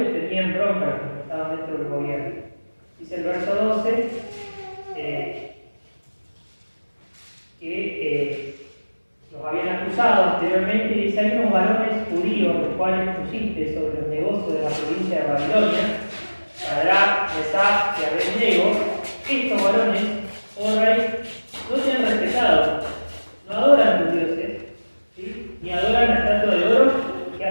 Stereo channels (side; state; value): both; inverted; correlation -1.00